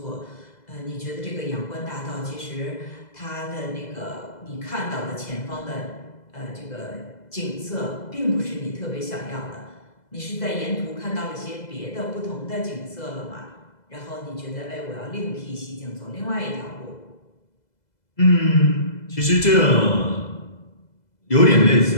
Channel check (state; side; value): late; right; 2.0 ms